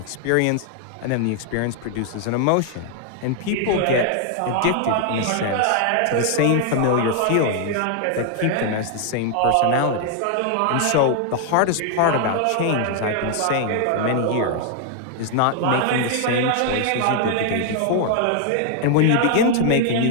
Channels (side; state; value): both; different; correlation 0.00